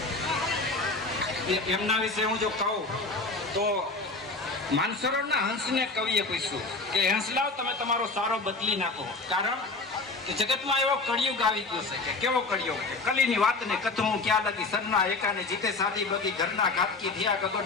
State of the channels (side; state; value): right; quieter; 3.6 dB